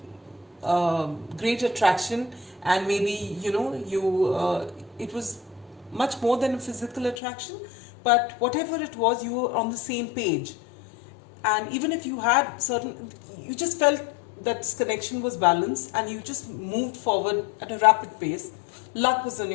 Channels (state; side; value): drops out; right; at 7.2 s